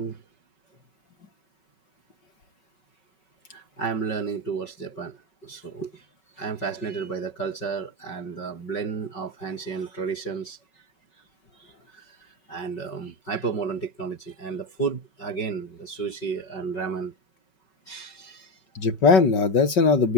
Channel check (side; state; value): right; late; 5.3 ms